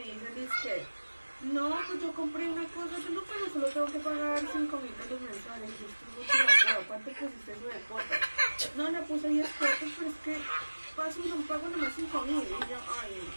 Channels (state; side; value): inverted; both; correlation -1.00